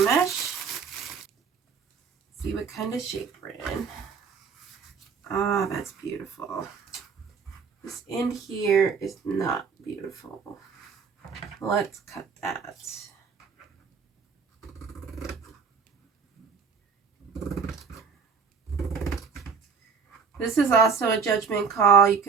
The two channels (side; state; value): left; quieter; 5.7 dB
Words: See what kind of shape we're in. Ah, that's beautiful. This end here is not beautiful. Let's cut that. This is also a judgment call. You